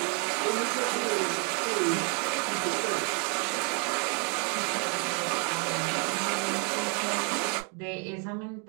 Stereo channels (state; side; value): quieter; left; 38.3 dB